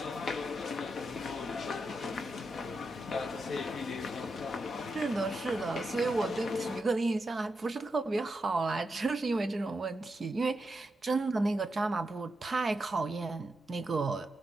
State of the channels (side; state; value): both; normal; correlation 0.86